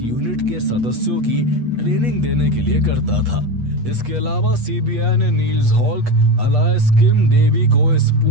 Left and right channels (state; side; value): late; left; 8.4 ms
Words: के सदस्यों की ट्रेनिंग देने के लिए करता था। इसके अलावा सीबीआई ने नील्स हॉल्क अलायस किम डेवी को इस